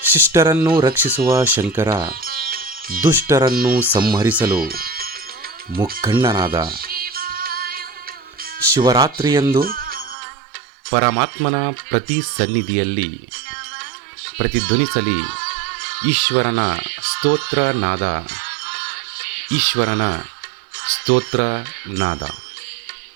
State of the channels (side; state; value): left; drops out; at 10.2 s